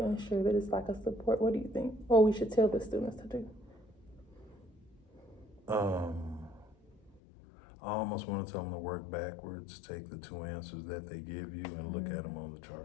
ensure that it's like a support? What do you think? Or we should tell the students to do? I almost wanna tell them to work backwards, take the two answers that they give you and look at them on the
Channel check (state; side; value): drops out; right; at 7.2 s